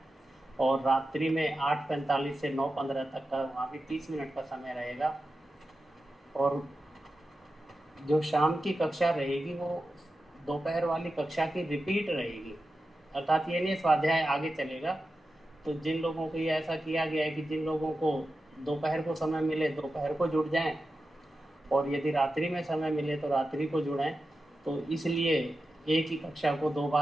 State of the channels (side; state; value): both; normal; correlation 0.92